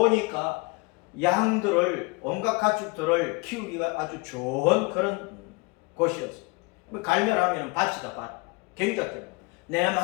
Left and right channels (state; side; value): quieter; right; 27.7 dB